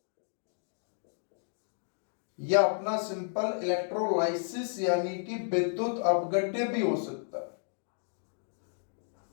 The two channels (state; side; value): silent; right; digital silence